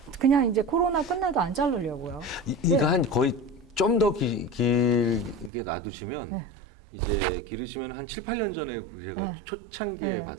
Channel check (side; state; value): left; drops out; at 5.5 s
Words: 그냥 이제 코로나 끝나도 안 자르려고요. 이거 한 거의 좀 더 길게 놔두시면 이제 기르시면 한 7, 8년 전에 제가 초창기에